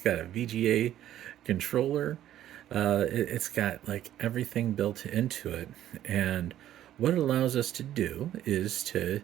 a VGA controller. It's got like everything built into it, and what it allows us to do is to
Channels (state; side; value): quieter; left; 12.2 dB